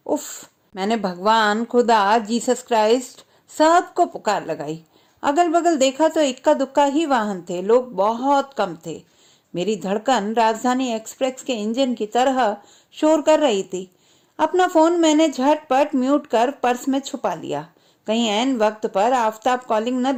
उफ! मैंने भगवान, खुदा, जीसस क्राइस्ट सबको पुकार लगाई। अगल बगल देखा तो इक्का दुक्का ही वाहन थे, लोग बहुत कम थे। मेरी धड़कन राजधानी एक्सप्रेस के इंजन की तरह शोर कर रही थी। अपना फोन मैंने झटपट म्यूट कर पर्स में छुपा लिया, कहीं ऐन वक्त पर आफताब कॉलिंग न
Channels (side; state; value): both; identical; correlation 1.00